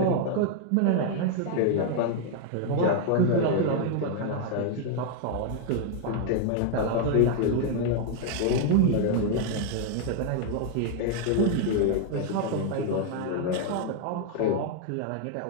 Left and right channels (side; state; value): both; different; correlation 0.00